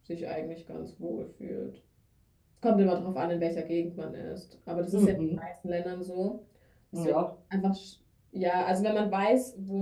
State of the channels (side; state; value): both; identical; correlation 1.00